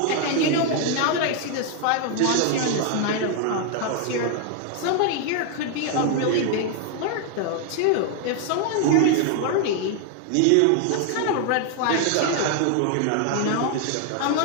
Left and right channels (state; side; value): different; both; correlation 0.00